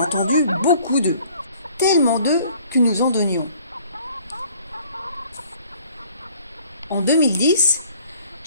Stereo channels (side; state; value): both; inverted; correlation -0.56